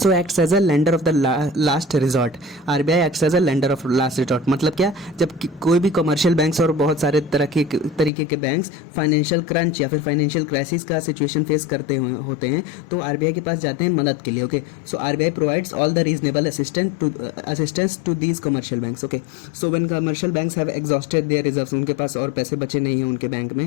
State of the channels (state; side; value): drops out; right; at 8.1 s